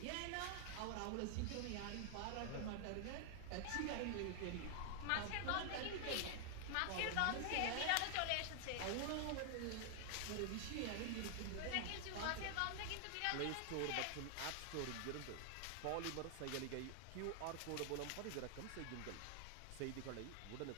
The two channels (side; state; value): both; different; correlation 0.00